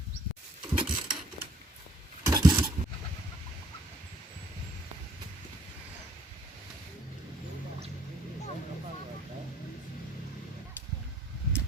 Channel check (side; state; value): both; normal; correlation 0.63